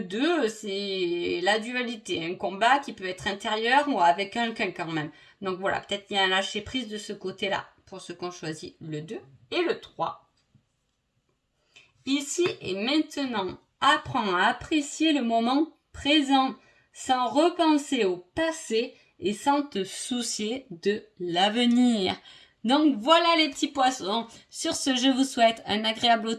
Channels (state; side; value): identical; both; correlation 1.00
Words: 2, c'est la dualité. Un combat qui peut être intérieur ou avec quelqu'un quand même. Donc voilà, peut-être qu'il y a un lâcher-prise de ce côté-là. Pour ceux qui ont choisi le 2 et le 3. Ici et maintenant, apprends à apprécier le moment présent sans repenser au passé et sans te soucier de l'avenir. Donc voilà les petits poissons. Sur ce, je vous souhaite un agréable